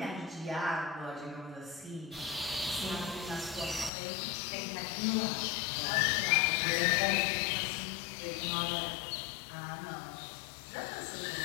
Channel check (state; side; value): drops out; right; at 3.9 s